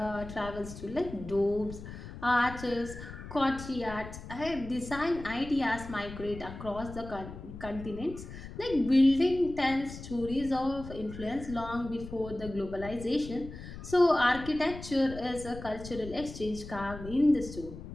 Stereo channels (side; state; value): left; noise; rumble, 12 dB below the sound